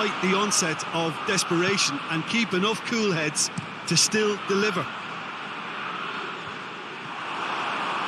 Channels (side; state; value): both; identical; correlation 1.00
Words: the onset of desperation and keep enough cool heads to still deliver.